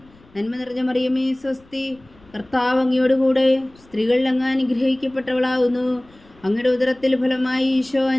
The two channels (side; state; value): left; noise; rumble, 28 dB below the sound